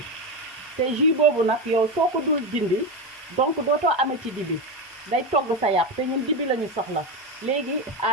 te jus boobu nag yow soo ko dul dindi donc dootoo amee ci dibi day togg sa yàpp te ñun dibi la ñu soxla léegi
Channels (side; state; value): both; normal; correlation 0.15